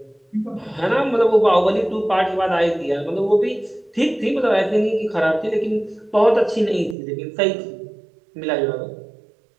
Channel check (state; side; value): drops out; left; at 7.0 s